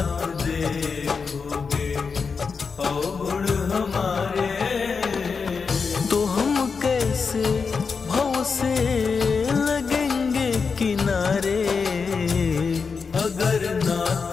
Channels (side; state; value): right; quieter; 5.3 dB